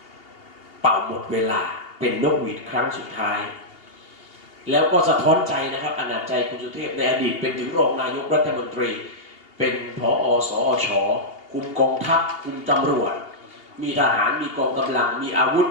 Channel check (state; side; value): late; right; 2.8 ms